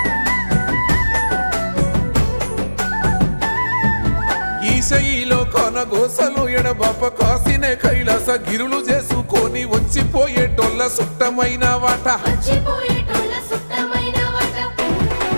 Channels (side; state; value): both; inverted; correlation -1.00